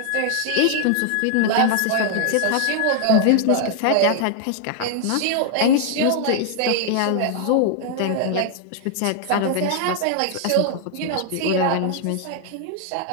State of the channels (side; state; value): both; different; correlation 0.00